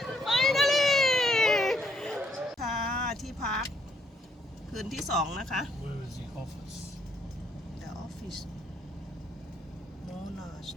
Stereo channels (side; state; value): both; normal; correlation 0.70